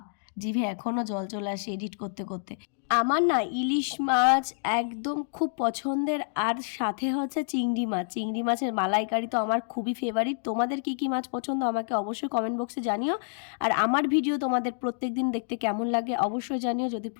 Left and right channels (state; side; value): silent; right; digital silence